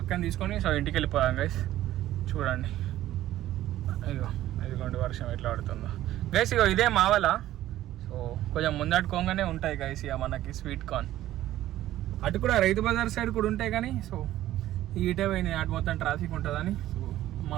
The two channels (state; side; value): quieter; left; 13.9 dB